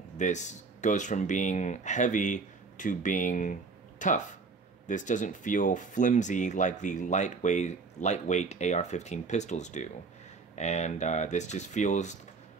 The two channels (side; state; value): left; quieter; 4.5 dB